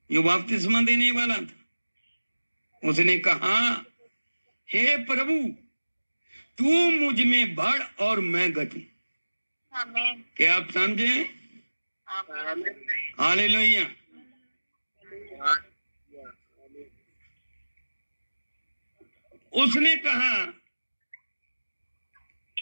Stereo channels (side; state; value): both; inverted; correlation -1.00